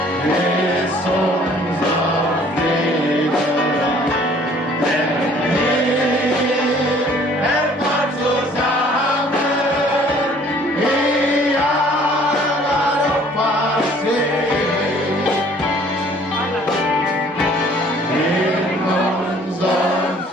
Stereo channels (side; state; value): both; normal; correlation 0.56